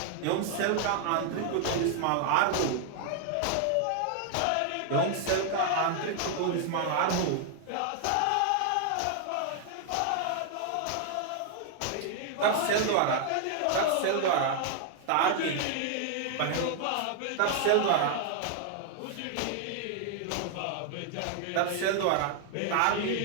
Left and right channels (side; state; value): both; different; correlation 0.00